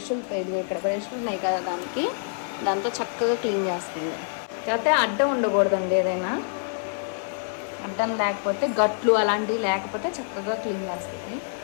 ఇది ఇక్కడ బ్రష్లు ఉన్నాయి కదా దాంతో చక్కగా క్లీన్ చేస్తుంది. కాకపోతే అడ్డం ఉండకూడదండి. ఏదైనా అడ్డం లేకపోతే గట్లు అలాంటివి లేకపోతే చక్కగా క్లీన్ చేస్తుంది.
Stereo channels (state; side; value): silent; right; 56 dB below the other